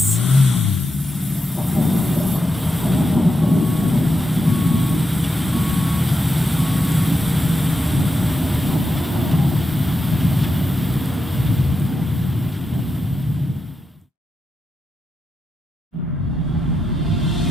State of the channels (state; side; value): normal; both; correlation 0.86